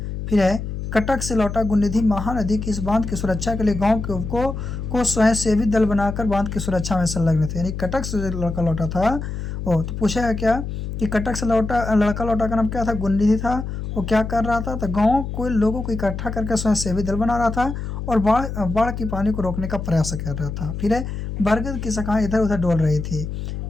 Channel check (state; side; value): noise; left; hum, 5 dB below the sound